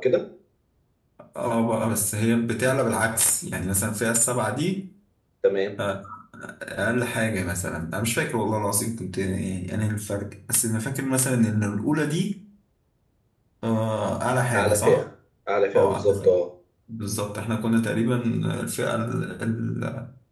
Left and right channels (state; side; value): identical; both; correlation 1.00